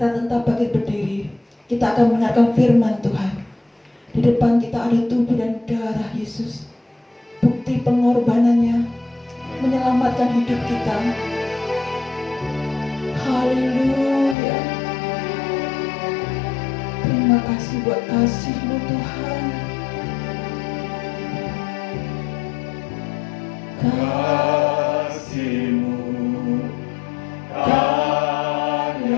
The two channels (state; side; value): drops out; right; at 14.4 s